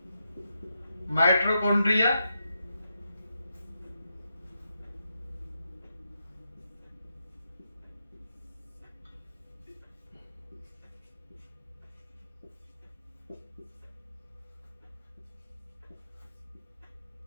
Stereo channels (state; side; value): inverted; both; correlation -0.84